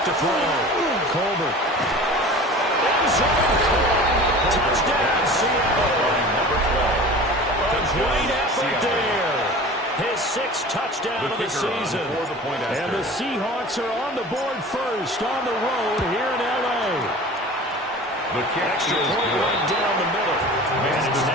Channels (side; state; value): both; normal; correlation 0.39